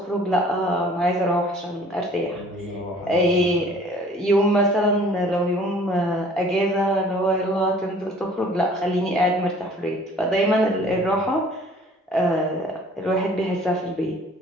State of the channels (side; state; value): both; normal; correlation 0.52